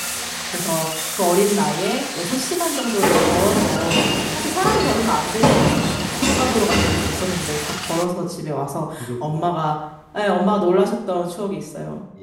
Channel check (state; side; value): identical; both; correlation 1.00